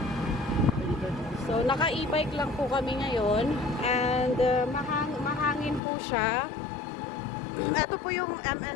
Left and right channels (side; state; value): right; drops out; at 5.8 s